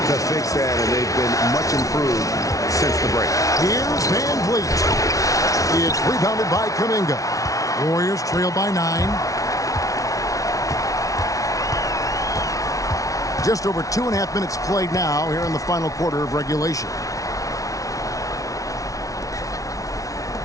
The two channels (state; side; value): late; right; 0.17 ms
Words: to fix that, and they've been much improved since the break. Here's Van Vliet. It's rebounded by Kuminga. Warriors trail by 9. Just over 2.5 minutes played now here in the final quarter of regulation.